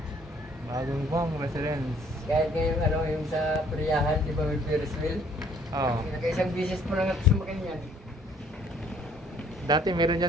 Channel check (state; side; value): normal; both; correlation 0.61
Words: Bagong bang residence. Kahit ngayon, ano, yung sa Priyahan, di ba may Ferris wheel? Oo. Nakaisang bisis po lang at sumakin yan. Dati meron